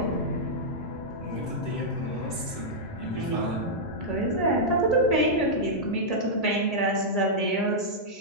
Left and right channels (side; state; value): right; late; 6.1 ms